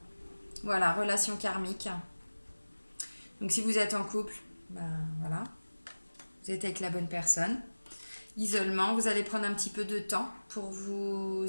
Voilà, relation karmique. Donc, si vous êtes en couple, ben voilà, vous êtes avec la bonne personne. Isolement, vous allez prendre un petit peu de temps pour vous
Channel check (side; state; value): both; inverted; correlation -1.00